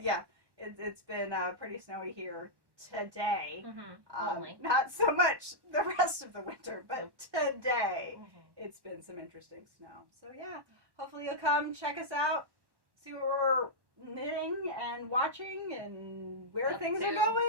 Yeah, it's been pretty snowy here today. Only. Not so much the rest of the winter, but today it's been some interesting snow. So yeah, hopefully you'll come check us out, see what we're knitting and watching and where things are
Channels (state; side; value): late; left; 1.1 ms